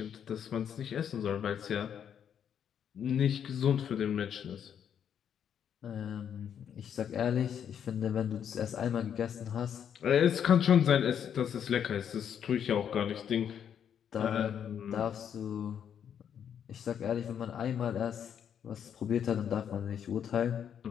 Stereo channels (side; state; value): right; quieter; 8.6 dB